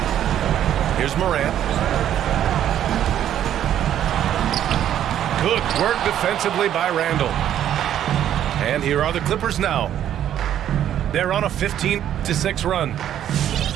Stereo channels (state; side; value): quieter; left; 10.8 dB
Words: Here's Morant. Good work defensively by Randall. And here are the Clippers now. They're on a 15-6 run.